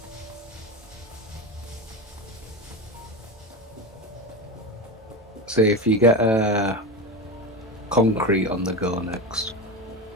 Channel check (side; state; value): both; normal; correlation 0.20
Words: See, if you get a concrete on the go next.